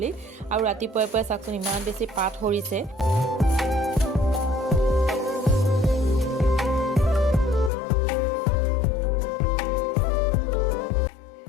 আৰু ৰাতিপুৱাই পুৱাই চাকচোন ইমান বেছি পাত হৰিছে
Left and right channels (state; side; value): drops out; right; at 7.7 s